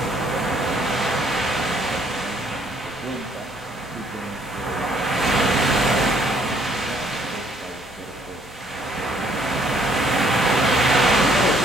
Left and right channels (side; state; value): both; normal; correlation 0.65